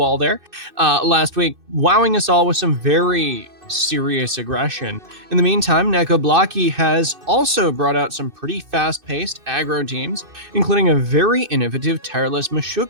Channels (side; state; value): left; late; 2.6 ms